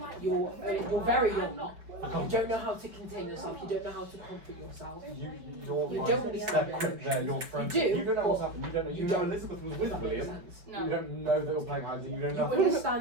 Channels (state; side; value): late; left; 5.4 ms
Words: You're very young. You don't know how to contain yourself. You don't know how to comfort yourself. You don't understand quick there, your friend. You do, You don't know what's but happened. You don't know. You you know don't. Elizabeth was with Does that make William. sense? No. You don't know they were playing hide and you don't You know.